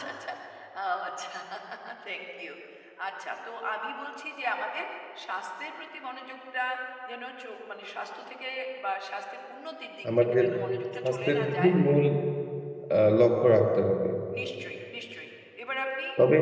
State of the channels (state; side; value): identical; both; correlation 1.00